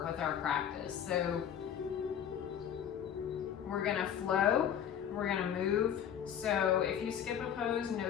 with our practice. So we're gonna flow, we're gonna move. So if you skip a pose,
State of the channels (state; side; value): quieter; right; 9.2 dB